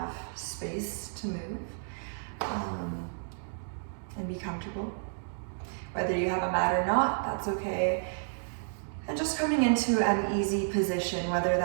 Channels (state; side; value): silent; left; digital silence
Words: space to move and be comfortable. Whether you have a mat or not, that's okay. And just coming into an easy position, whether